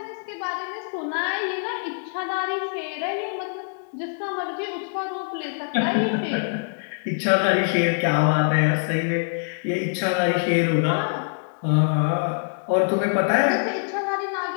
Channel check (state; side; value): silent; right; digital silence